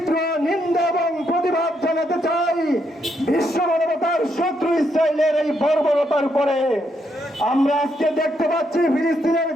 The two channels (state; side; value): normal; both; correlation 0.77